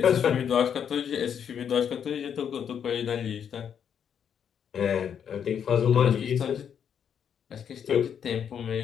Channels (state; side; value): quieter; right; 8.1 dB